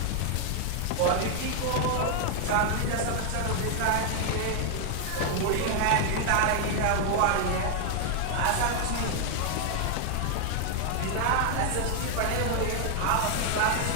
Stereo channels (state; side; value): different; both; correlation 0.00